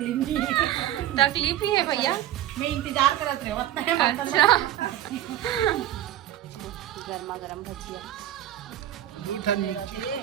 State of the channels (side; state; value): left; quieter; 12.9 dB